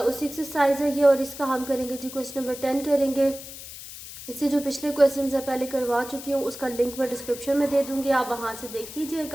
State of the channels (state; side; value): noise; left; hiss, 13 dB below the sound